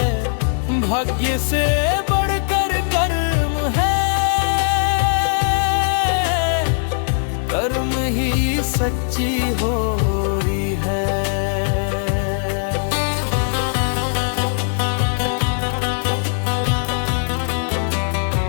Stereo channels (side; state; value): right; silent; 66 dB below the other